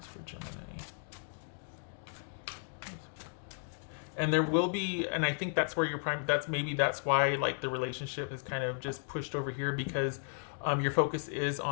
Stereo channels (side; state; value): right; silent; digital silence